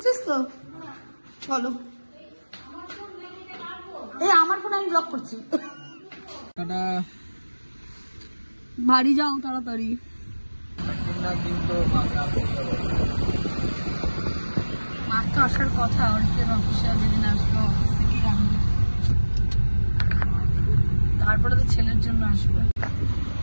তো? চলো। এই আমার ফোন আমি ব্লক করছি। বাড়ি যাও তাড়াতাড়ি। মার তো আসার কথা, অর্থের অফিসে যেদিন আসবো অফিস থেকেই আনবো, তারপরে তো ছেলের জন্য আসবে।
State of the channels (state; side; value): inverted; both; correlation -1.00